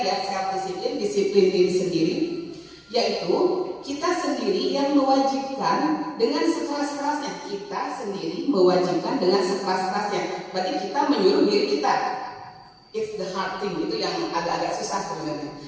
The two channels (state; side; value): identical; both; correlation 1.00